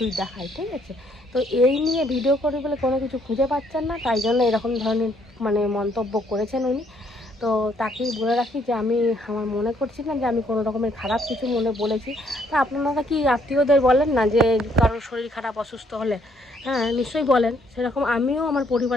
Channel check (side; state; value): both; normal; correlation 0.67